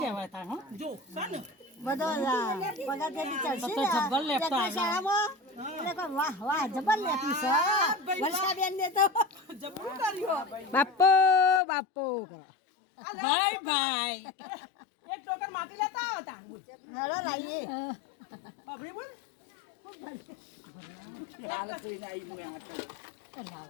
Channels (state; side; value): drops out; right; at 11.6 s